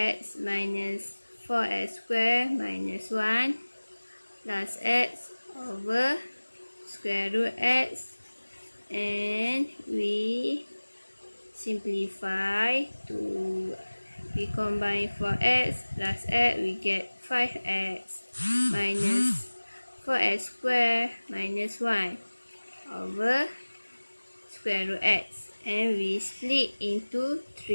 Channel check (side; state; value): both; inverted; correlation -1.00